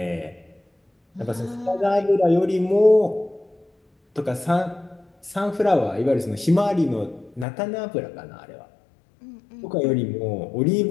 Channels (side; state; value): right; drops out; at 7.5 s